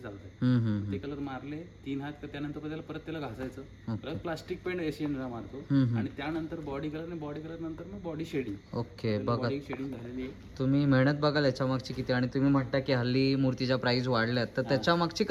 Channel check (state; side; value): identical; both; correlation 1.00